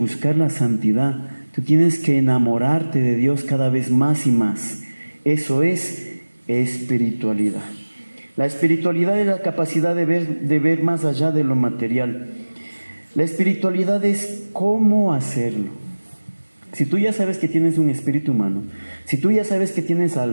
la santidad, tú tienes que enamorarte de Dios cada vez más y más. Eso es espiritualidad. La espiritualidad es la capacidad de ver más allá de lo material. La espiritualidad es cómo hacerlo. Si tú ya sabes que tienes un espíritu humano, si tú ya sabes que tienes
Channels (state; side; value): inverted; both; correlation -1.00